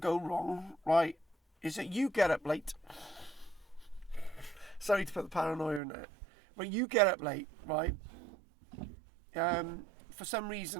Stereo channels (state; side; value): drops out; left; at 5.8 s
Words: wrong, right, is that you get up late. Sorry to put the paranoia in there. But you get up late, right? For some